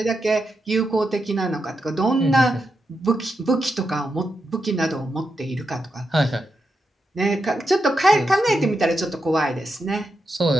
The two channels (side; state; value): both; normal; correlation 0.86